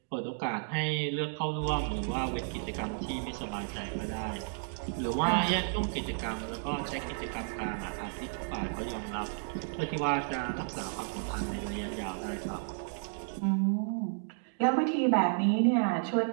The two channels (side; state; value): left; silent; digital silence